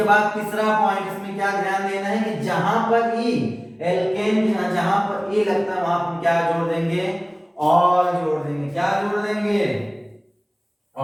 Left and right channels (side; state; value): both; identical; correlation 1.00